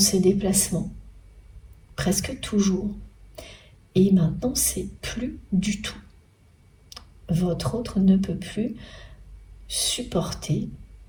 déplacements. Presque toujours. Et maintenant, c'est plus du tout. Votre autre ne peut plus supporter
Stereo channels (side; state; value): both; identical; correlation 1.00